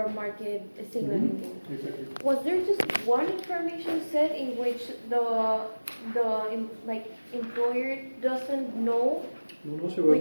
market signaling game. Exactly. Was there just one information set in which the employer doesn't know No, so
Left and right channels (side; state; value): both; inverted; correlation -1.00